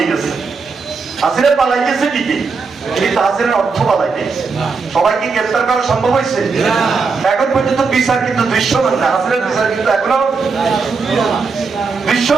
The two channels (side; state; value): left; quieter; 4.7 dB